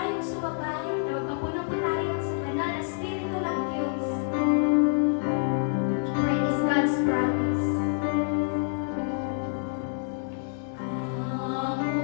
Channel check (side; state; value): right; silent; digital silence